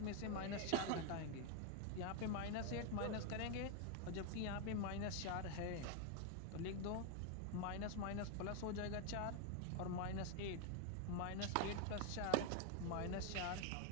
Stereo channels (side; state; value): both; different; correlation 0.01